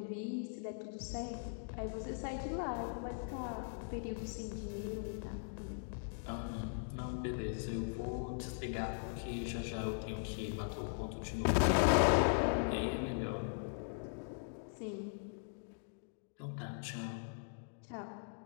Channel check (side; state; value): right; silent; digital silence